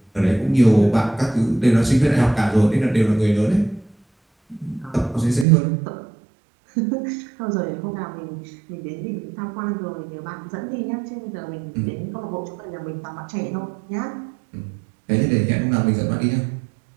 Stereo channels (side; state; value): left; drops out; at 5.5 s